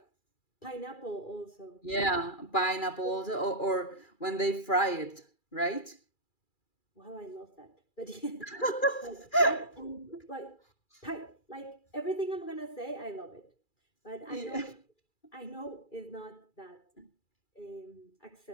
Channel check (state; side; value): late; right; 2.3 ms